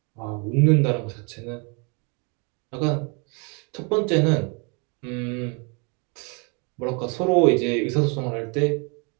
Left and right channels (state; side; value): quieter; left; 33.5 dB